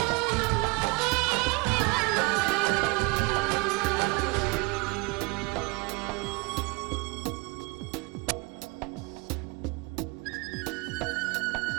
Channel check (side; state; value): left; quieter; 27.8 dB